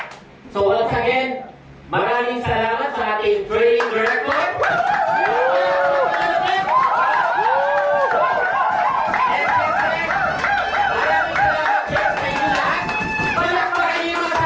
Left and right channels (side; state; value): both; identical; correlation 1.00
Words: so once again, maraming salamat sa ating training director.